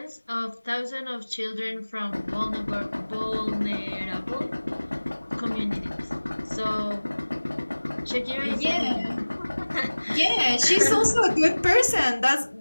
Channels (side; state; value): both; inverted; correlation -1.00